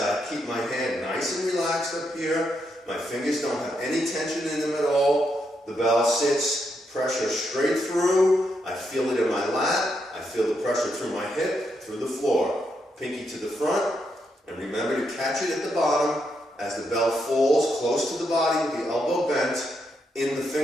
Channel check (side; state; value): both; normal; correlation 0.80